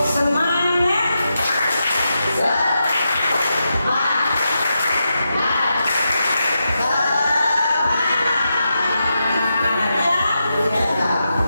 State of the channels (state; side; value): inverted; both; correlation -0.87